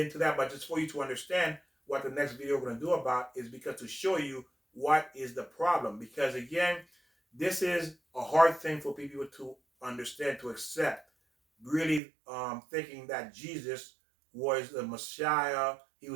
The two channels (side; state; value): left; drops out; at 12.0 s